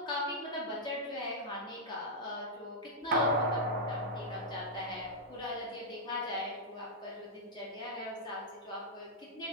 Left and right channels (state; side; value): normal; both; correlation -0.08